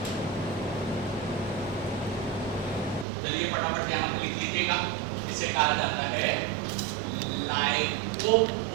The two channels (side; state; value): left; drops out; at 3.1 s